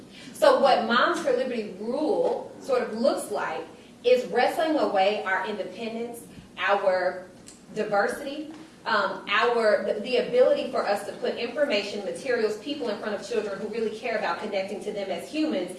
So what Moms for Liberty rule sort of looks like is wrestling away our independence, our diversity, the ability for us to put information, materials, people in front of children who really care about connecting to them as humans,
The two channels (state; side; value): identical; both; correlation 1.00